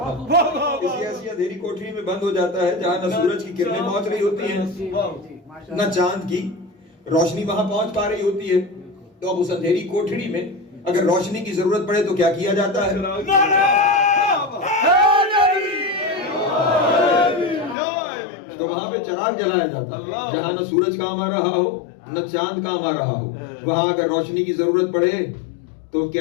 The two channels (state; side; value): drops out; right; at 17.8 s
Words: کسی ایسی اندھیری کوٹری میں بند ہو جاتا ہے جہاں نہ سورج کی کرنیں پہنچ رہی ہوتی ہیں نہ چاند کی روشنی وہاں پہنچ پا رہی ہوتی ہے. تو اب اس اندھیری کوٹری میں اگر روشنی کی ضرورت پڑے تو کیا کیا جاتا ہے؟ تو وہاں پہ چراغ جلایا جاتا ہے جہاں نہ سورج کام آ رہا ہو نہ چاند کام آ رہا ہو. وہاں اگر روشنی کی ضرورت پڑے تو